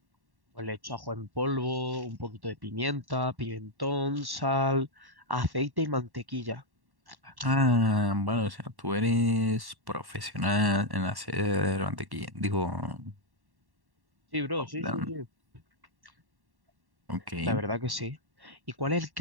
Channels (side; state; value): left; late; 1.1 ms